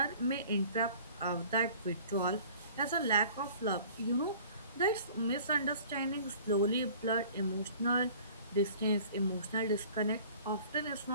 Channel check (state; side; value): inverted; both; correlation -0.48